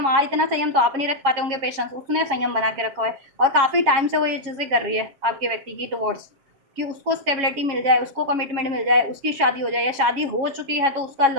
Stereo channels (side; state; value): left; late; 7.6 ms